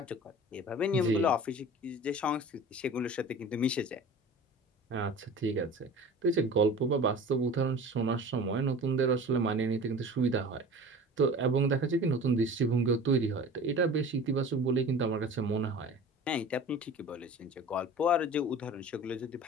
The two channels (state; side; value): normal; both; correlation 0.40